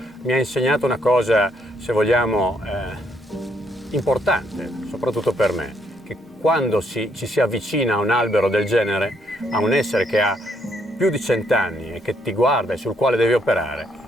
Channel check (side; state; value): both; normal; correlation 0.72